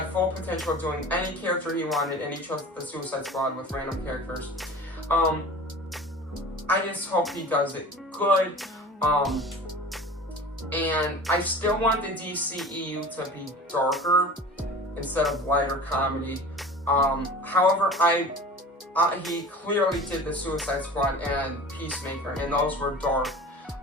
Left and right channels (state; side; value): normal; both; correlation 0.38